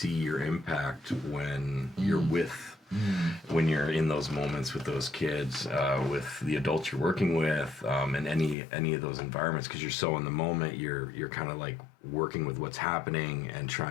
your impact when you're when you're in those moments with those kids, with the adults you're working with, in any of those environments, because you're so in the moment, you're kind of like working with what's happening and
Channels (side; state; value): right; drops out; at 8.6 s